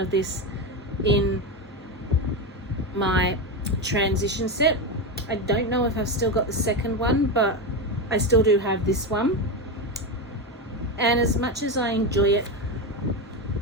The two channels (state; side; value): normal; both; correlation 0.15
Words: of this in my transition set. I don't know if I've still got the second one, but I still do have this one. And as much as I enjoy it,